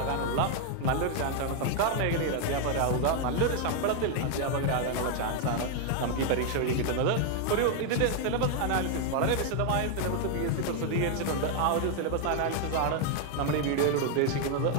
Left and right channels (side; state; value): both; different; correlation 0.00